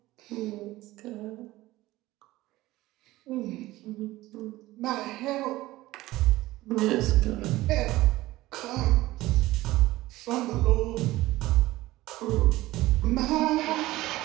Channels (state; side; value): quieter; left; 17.6 dB